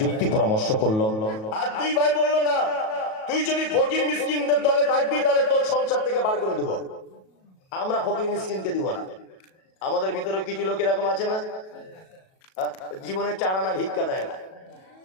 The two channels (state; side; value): late; right; 37 ms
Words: যুক্তি পরামর্শ করলো। আর 2 ভাই বললো, না তুই যদি ফকির মিসকিনদের দলে থাকবি তাহলে তোর সংসার থেকে বার করে দেবো, আমরা ফকির মিসকিনকে দিব না। আমাদের ভিতরে কিছু লোক এরকম আছে না, জীবনে 4 আনা ভিক্ষা দেয় না,